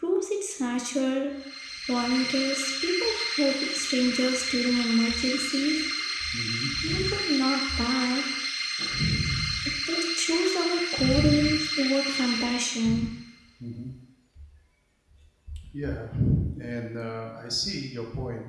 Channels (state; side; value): identical; both; correlation 1.00